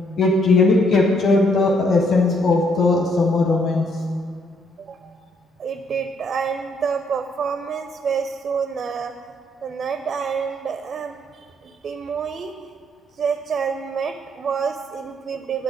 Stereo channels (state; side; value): normal; both; correlation 0.69